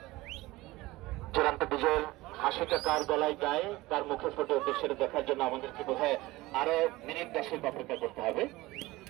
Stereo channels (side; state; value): left; quieter; 19.5 dB